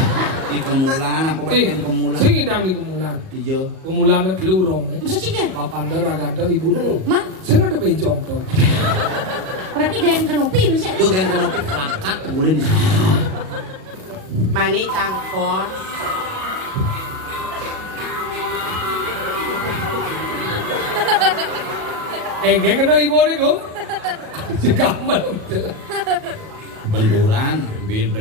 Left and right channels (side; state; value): left; late; 37 ms